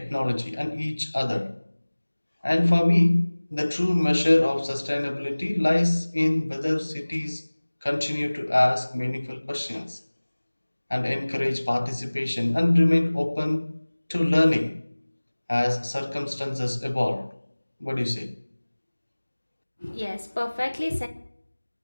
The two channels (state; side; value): inverted; both; correlation -1.00